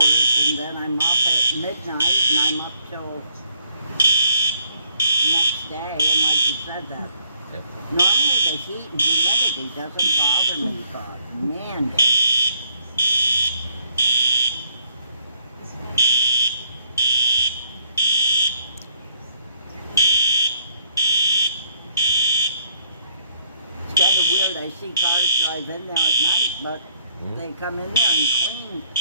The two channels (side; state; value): both; inverted; correlation -0.67